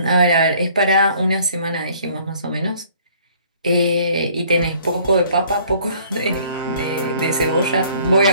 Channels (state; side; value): inverted; both; correlation -0.57